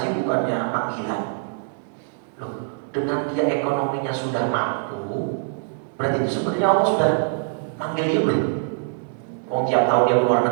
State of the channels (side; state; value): left; silent; 63 dB below the other